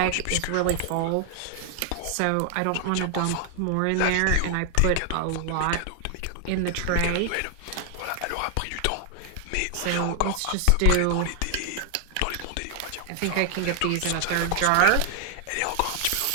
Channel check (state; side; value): different; both; correlation 0.00